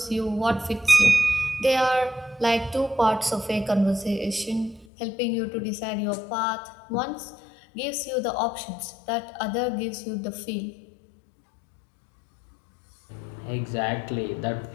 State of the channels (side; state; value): right; drops out; at 4.9 s